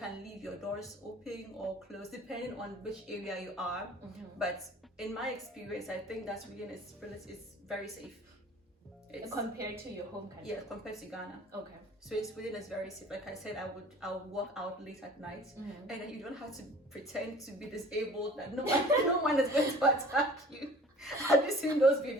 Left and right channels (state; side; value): normal; both; correlation 0.47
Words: leave your doors open or closed depending on which area you are. But in my experience, I think that Sweden is very safe. Compared to your home country? Yeah, compared to Ghana. Okay. So Sweden is very safe. Like I said, I would walk out late at night, and then you don't have to pretend to be disabled, that no one is going to attack you. Have you seen those